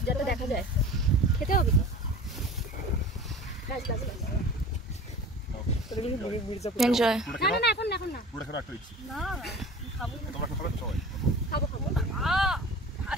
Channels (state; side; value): normal; both; correlation 0.38